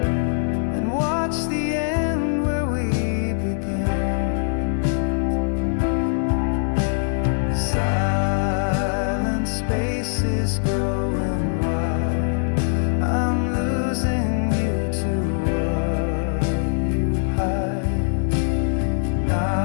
and watch the end where we began? Silent spaces growing wide, I'm losing you to what you hide.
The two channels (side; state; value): right; silent; digital silence